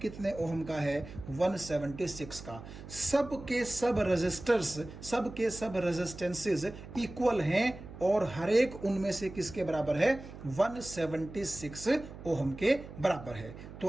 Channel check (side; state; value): right; noise; hum, 14 dB below the sound